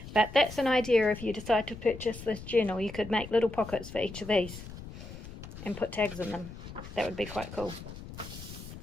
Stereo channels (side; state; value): left; noise; rumble, 12 dB below the sound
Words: But that's an idea. If you decide to purchase this journal, you could make little pockets for each of these and put tags in them. That would be quite cool.